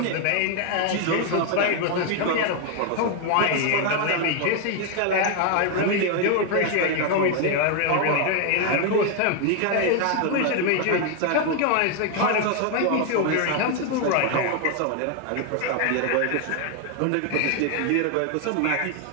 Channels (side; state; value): both; different; correlation 0.01